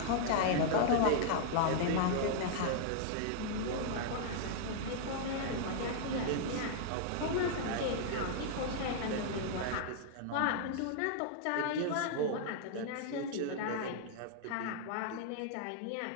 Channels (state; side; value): different; both; correlation -0.01